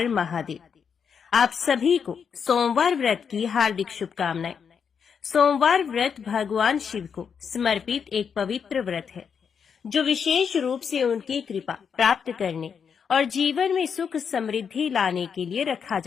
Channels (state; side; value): quieter; right; 6.8 dB